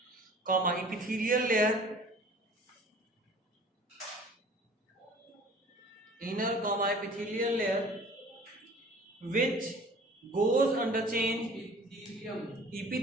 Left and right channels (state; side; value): normal; both; correlation 0.47